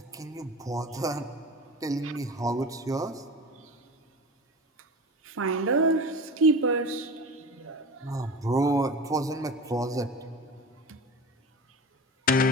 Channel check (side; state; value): both; normal; correlation 0.32